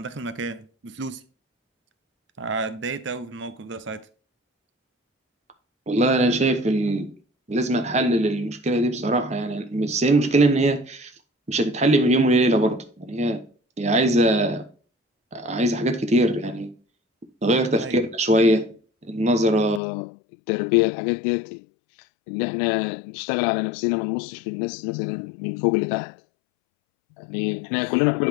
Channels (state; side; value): drops out; right; at 19.8 s